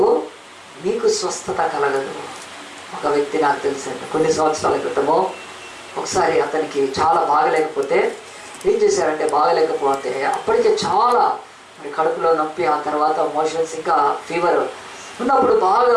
మీకు స్వస్థత కలగదు. ఒక వ్యక్తి నాకు తెలిసింది, కొన్ని సంవత్సరాల క్రితము ఒకసారి అతనికి చాలా బాగలేకపోతే ఏం చేశారంటే, బాగలేకపోతే అప్పటికే చాలా మరి కడుపులో నొప్పి, ఆ తర్వాత మోషన్స్, ఇంకా ఫీవర్ ఉన్నప్పుడు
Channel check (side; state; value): both; identical; correlation 1.00